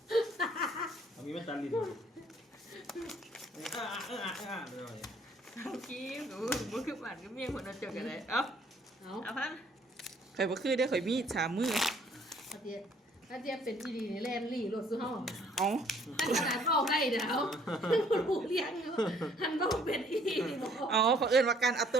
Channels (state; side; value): normal; both; correlation 0.61